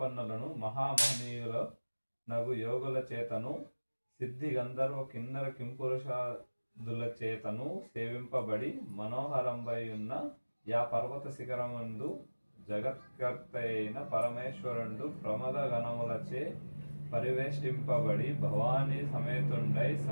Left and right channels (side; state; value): both; inverted; correlation -1.00